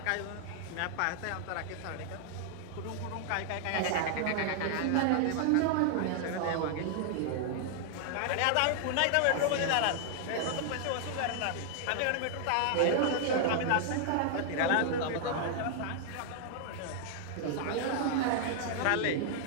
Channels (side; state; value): both; different; correlation -0.01